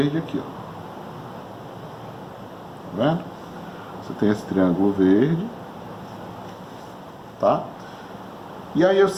aqui, ó. Tá vendo? Você tem esse triângulo verde, tá? E aí,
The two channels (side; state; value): both; identical; correlation 1.00